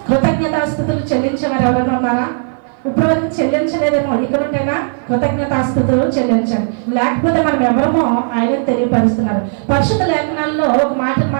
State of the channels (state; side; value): silent; left; 56 dB below the other